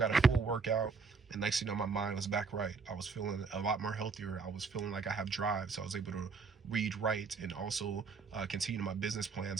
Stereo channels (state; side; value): quieter; left; 5.0 dB